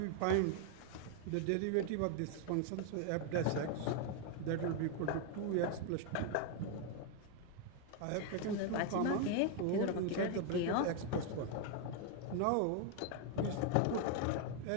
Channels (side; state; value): both; different; correlation 0.00